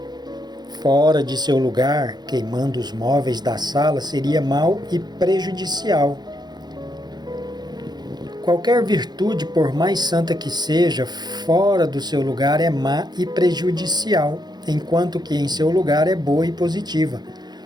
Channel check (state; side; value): late; left; 0.20 ms